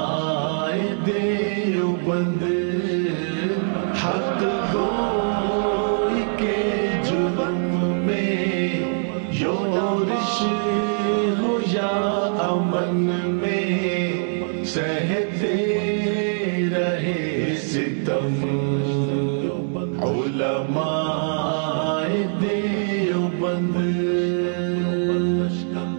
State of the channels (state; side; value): silent; left; digital silence